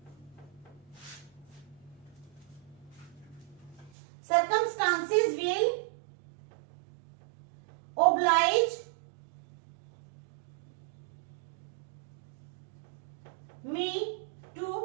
will oblige me to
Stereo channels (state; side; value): drops out; left; at 3.9 s